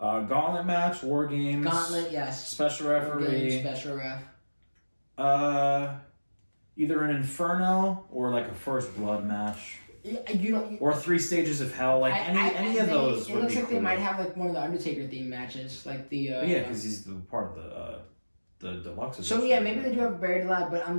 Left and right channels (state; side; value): inverted; both; correlation -1.00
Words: match, War Games. Gauntlet, yes. Special referee. War Games, special ref. Either an Inferno or like a First Blood match. Or 3 Stages of Hell, like any of those. It looks like they might have like one of the Undertaker themed matches, like the. Yeah, because he's the part of the deluxe. So yeah, maybe they do have Buried Alive, but